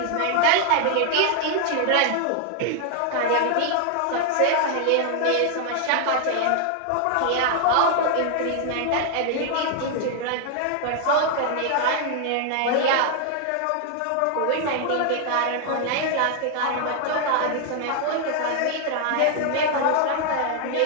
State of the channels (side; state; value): both; different; correlation 0.00